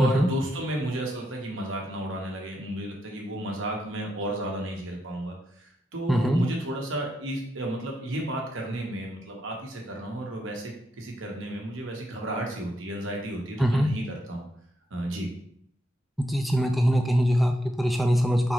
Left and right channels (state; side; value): normal; both; correlation 0.82